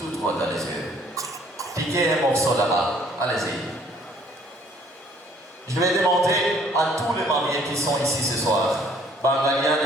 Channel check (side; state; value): both; normal; correlation 0.60